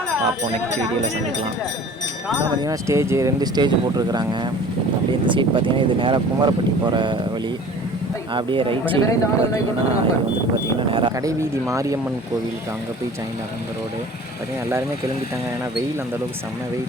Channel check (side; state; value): both; normal; correlation 0.45